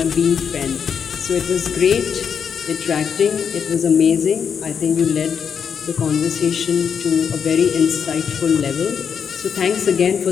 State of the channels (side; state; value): right; quieter; 7.1 dB